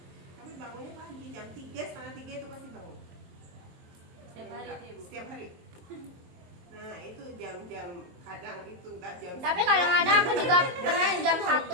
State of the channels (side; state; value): left; late; 22 ms